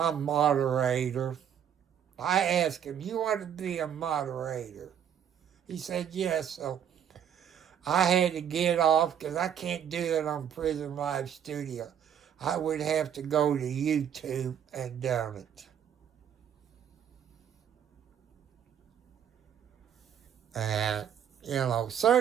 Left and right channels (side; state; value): left; quieter; 9.0 dB